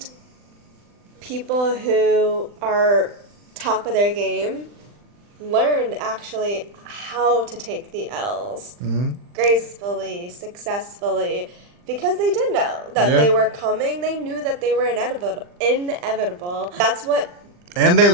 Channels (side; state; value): left; late; 40 ms